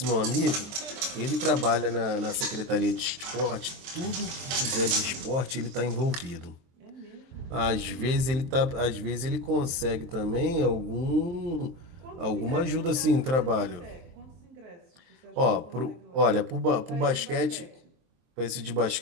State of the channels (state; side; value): late; left; 23 ms